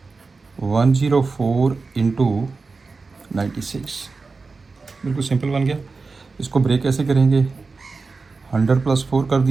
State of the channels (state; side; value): quieter; left; 4.2 dB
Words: 104 इंटू 96, बिल्कुल सिंपल बन गया। इसको ब्रेक कैसे करेंगे, 100 प्लस 4 कर